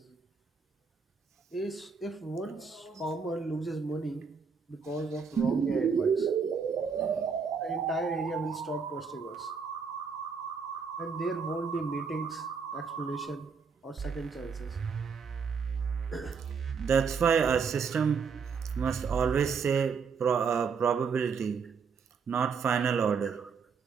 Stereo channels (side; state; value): left; quieter; 5.7 dB